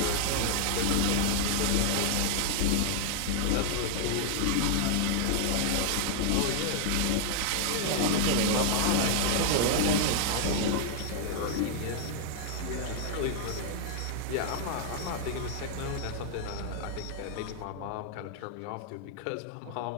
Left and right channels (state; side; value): different; both; correlation -0.01